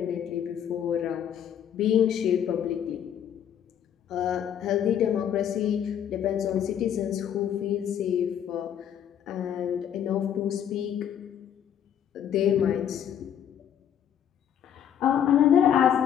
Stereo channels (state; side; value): quieter; right; 9.4 dB